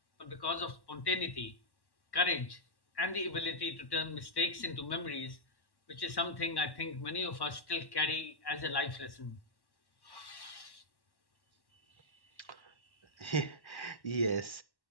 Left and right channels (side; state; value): right; late; 1.1 ms